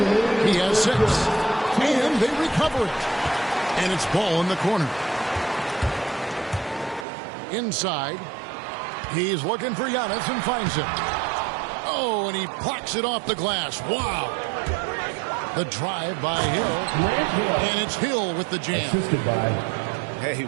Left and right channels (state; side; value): drops out; left; at 7.1 s